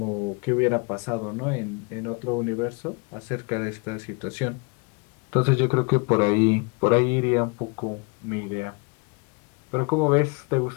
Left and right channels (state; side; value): quieter; right; 32.2 dB